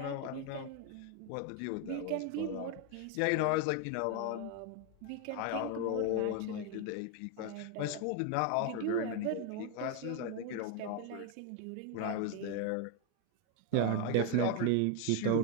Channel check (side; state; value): both; different; correlation 0.01